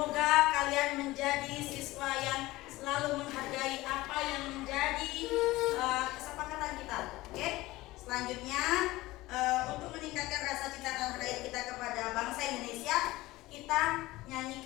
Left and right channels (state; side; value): quieter; right; 18.7 dB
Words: kalian menjadi siswa yang selalu menghargai apa yang menjadi kesepakatan kita. Oke? Selanjutnya untuk meningkatkan rasa cinta tanah air kita kepada bangsa Indonesia, kita